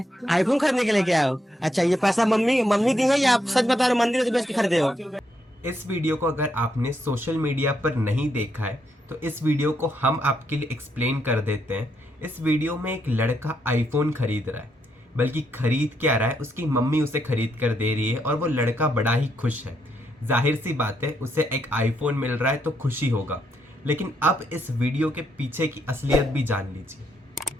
आईफोन खरीदने के लिए क्या हो? अच्छा, ये पैसा मम्मी मम्मी दी है या आप सच बता रहे हो मंदिर से बेच के खरीदे हो? इस वीडियो को अगर आपने सोशल मीडिया पर नहीं देखा है तो इस वीडियो को हम आपके लिए एक्सप्लेन कर देते हैं। इस वीडियो में एक लड़का आईफोन खरीद रहा है, बल्कि खरीद क्या रहा है, उसकी मम्मी उसे खरीद कर दे रही है और वो लड़का बड़ा ही खुश है। जाहिर सी बात है, उसे एक आईफोन मिल रहा है तो खुशी होगा। लेकिन अब इस वीडियो के पीछे की असलियत भी जान लीजिए।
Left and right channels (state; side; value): normal; both; correlation 0.78